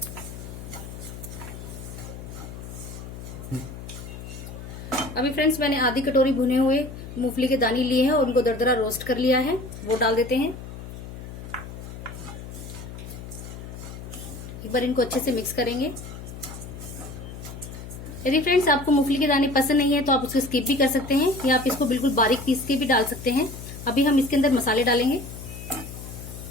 अभी फ्रेंड्स मैंने आधी कटोरी भुने हुए मूंगफली के दाने लिए हैं और उनको दरदरा रोस्ट कर लिया है, वो डाल देते हैं। एक बार इनको अच्छे से मिक्स करेंगे। यदि फ्रेंड्स आपको मूंगफली के दाने पसंद नहीं है तो आप उसको स्किप भी कर सकते हैं या आप इसको बिल्कुल बारीक पीस के भी डाल सकते हैं। अभी हम इसके अंदर मसाले डालेंगे।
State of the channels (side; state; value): left; noise; hum, 11 dB below the sound